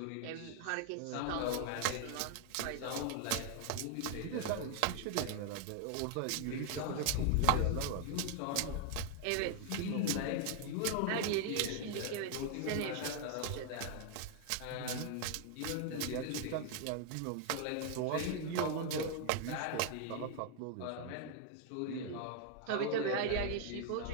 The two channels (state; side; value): different; both; correlation 0.00